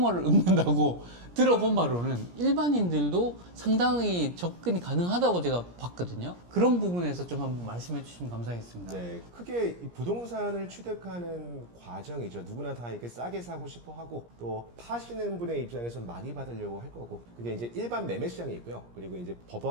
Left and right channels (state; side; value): late; left; 17 ms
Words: 읊는다고 들어본 바로는 일반인들도 상당히 접근이 가능하다고 제가 봤거든요. 그런 부분에서 좀 한번 말씀해 주시면 감사하겠습니다. 네, 크게 이 부동산을 취득하는 과정이죠. 누구나 다 이렇게 싸게 사고 싶어 하고 또 파시는 분의 입장에서 많이 받으려고 할 거고 그게 이제 일반 매매 시장이 있고요. 그리고 이제